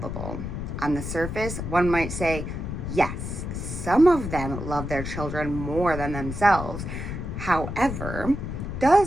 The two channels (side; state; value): left; noise; rumble, 6 dB below the sound